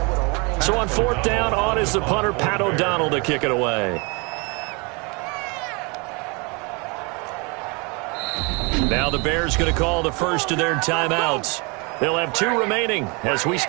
So on 4th down, on is the punter, Pat O'Donnell, to kick it away. Now the Bears going to call the first of their timeouts. They'll have 2 remaining as we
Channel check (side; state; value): left; quieter; 30.2 dB